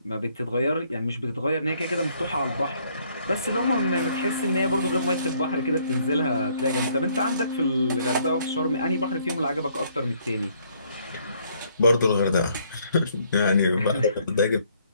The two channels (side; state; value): both; inverted; correlation -0.66